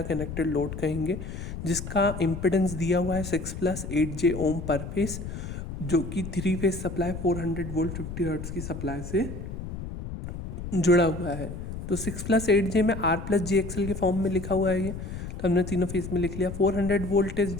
कनेक्टेड लोड कहेंगे, जिसका इम्पिडेंस दिया हुआ है 6+8J ओम पर फेज, जो कि 3 फेज सप्लाई 400 वोल्ट 50 हर्ट्ज की सप्लाई से जुड़ा हुआ है। तो 6+8J में R+JXL के फॉर्म में लिखा हुआ है ये, तो हमने तीनों फेज में लिख लिया। 400 volt is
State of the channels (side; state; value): left; noise; rumble, 8 dB below the sound